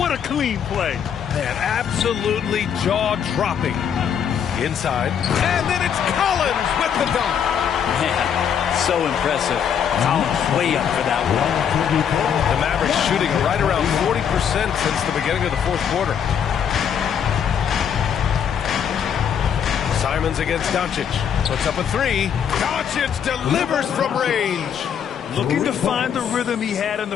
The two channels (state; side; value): quieter; right; 8.1 dB